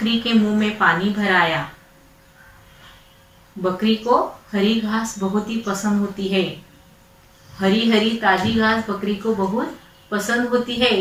के मुंह में पानी भर आया। बकरी को हरी घास बहुत ही पसंद होती है। हरी हरी ताजी घास बकरी को बहुत पसंद होती है।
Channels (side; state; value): both; identical; correlation 1.00